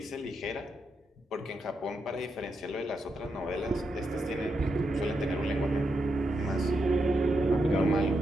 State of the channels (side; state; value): both; normal; correlation 0.84